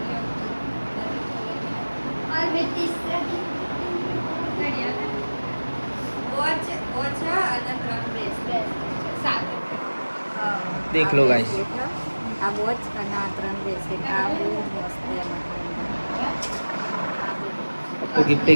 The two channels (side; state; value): both; inverted; correlation -1.00